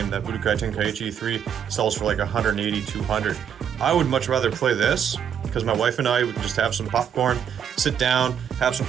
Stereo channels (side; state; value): left; quieter; 8.4 dB